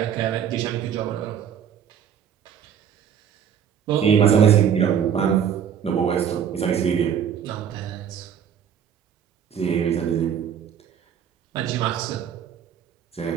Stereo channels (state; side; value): quieter; left; 8.5 dB